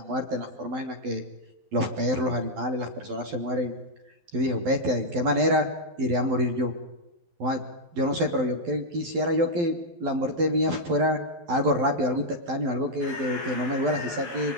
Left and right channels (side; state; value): left; late; 12 ms